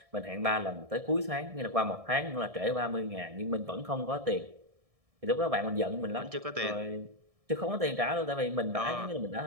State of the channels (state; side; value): late; left; 1.6 ms